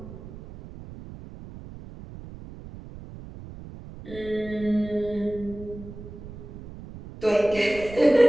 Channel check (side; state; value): right; noise; rumble, 15 dB below the sound